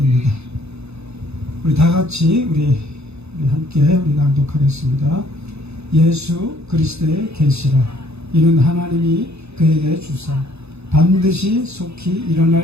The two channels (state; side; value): late; left; 0.80 ms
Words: 우리 다 같이 우리 함께 우리 낭독하겠습니다. 예수 그리스도의 계시라. 이는 하나님이 그에게 주사 반드시 속히